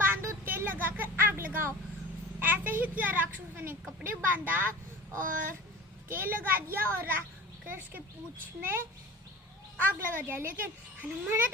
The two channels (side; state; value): both; normal; correlation 0.36